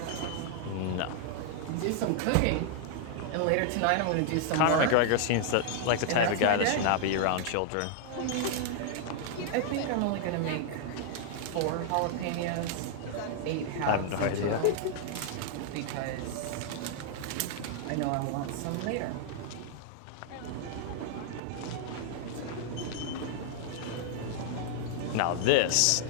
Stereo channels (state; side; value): different; both; correlation 0.00